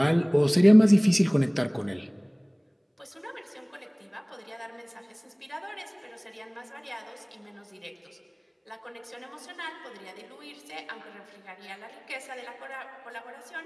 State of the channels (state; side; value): identical; both; correlation 1.00